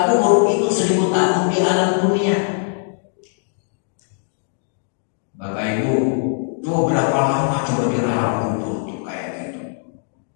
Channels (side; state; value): right; silent; digital silence